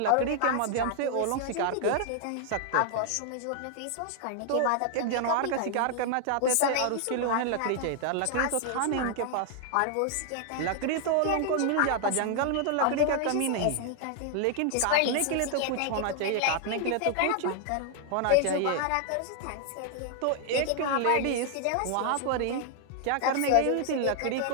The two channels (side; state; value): both; different; correlation 0.00